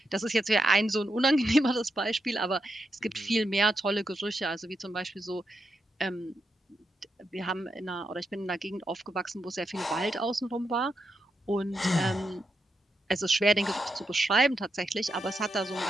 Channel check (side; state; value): both; normal; correlation 0.84